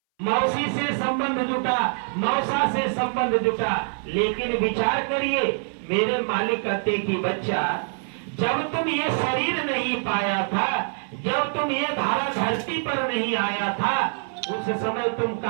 मौसी से संबंध जुटा, मौसा से संबंध जुटा, लेकिन विचार करिए मेरे मालिक कहते कि बच्चा, जब तुम ये शरीर नहीं पाया था, जब तुम ये धारा धरती पर नहीं आया था, उस समय तुम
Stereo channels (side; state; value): left; silent; 60 dB below the other